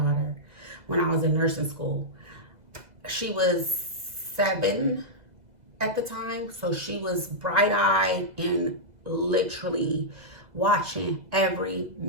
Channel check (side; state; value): left; late; 2.0 ms